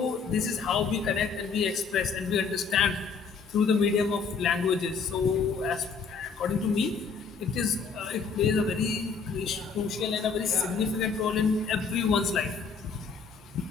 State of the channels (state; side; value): quieter; right; 5.3 dB